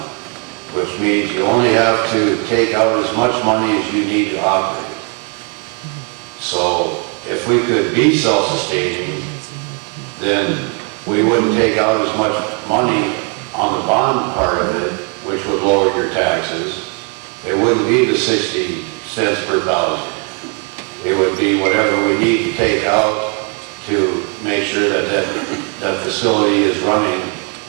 which means you only have to take out as much money as you need to operate. So if we could be self-sustaining, then we wouldn't take out as much money on the bond part of it, which would lower your taxes. It wouldn't be the 60 cents per thousand. It would be whatever we need to take out to make sure that that facility is running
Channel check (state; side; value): quieter; left; 37.4 dB